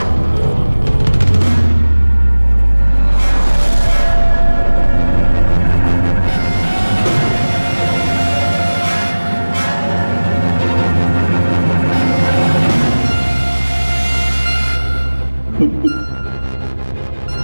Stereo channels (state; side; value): inverted; both; correlation -1.00